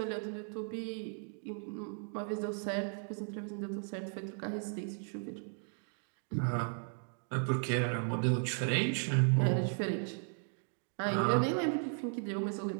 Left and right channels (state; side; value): silent; left; 54 dB below the other